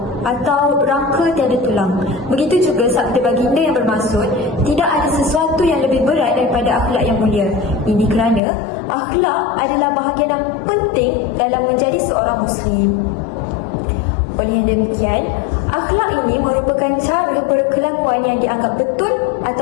atau rangka tiada tulang. Begitu juga sabda baginda yang bermaksud tidak ada sesuatu yang lebih berat daripada akhlak yang mulia. Ini kerana akhlak adalah bahagian yang penting dalam menjadi seorang Muslim. Oleh demikian, akhlak ini merupakan cara berkelakuan yang dianggap betul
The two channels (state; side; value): drops out; right; at 8.4 s